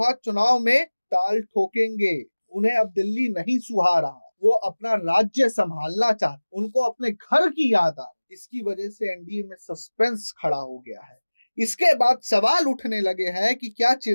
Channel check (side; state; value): both; inverted; correlation -1.00